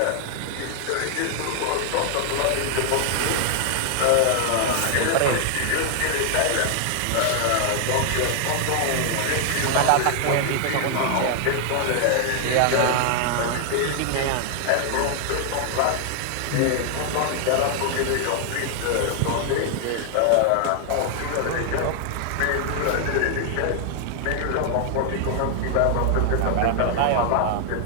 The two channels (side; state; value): both; different; correlation 0.00